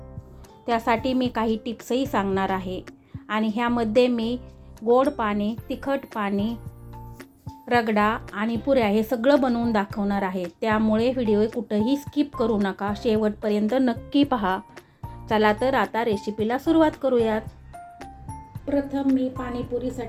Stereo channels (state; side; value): identical; both; correlation 1.00